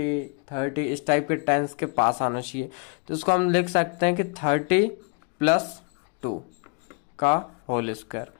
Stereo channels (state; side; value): quieter; right; 35.5 dB